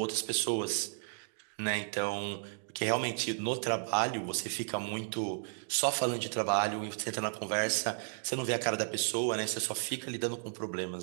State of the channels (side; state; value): left; silent; digital silence